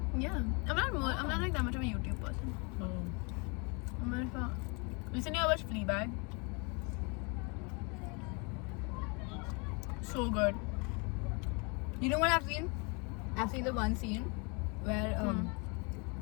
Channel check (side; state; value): right; quieter; 32.1 dB